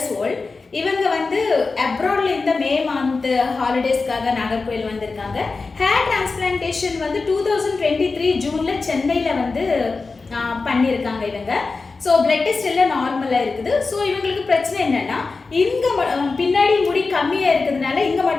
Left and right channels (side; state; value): right; quieter; 4.1 dB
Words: old. இவங்க வந்து அப்ராட்ல இந்த மே மந்த் ஹாலிடேஸ்க்காக நாகர்கோயில் வந்திருக்காங்க. ஹேர் டிரான்ஸ்பிளான்டேஷன் வந்து 2023 ஜூன்ல சென்னையில் வந்து பண்ணியிருக்காங்க இவங்க. ஸோ பிளட் டெஸ்ட் எல்லாம் நார்மலாக இருக்குது. ஸோ இவங்களுக்கு பிரச்சனை என்னன்னா, இங்கே பின்னாடி முடி கம்மியாக இருக்கிறதுனால இங்கே